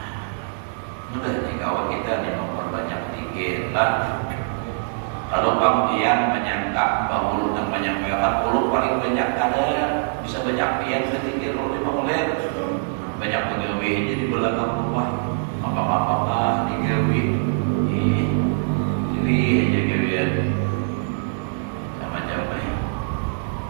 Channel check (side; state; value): left; silent; digital silence